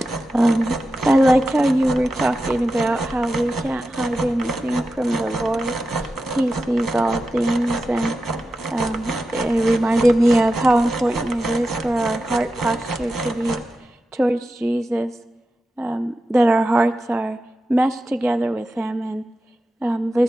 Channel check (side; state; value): both; normal; correlation 0.91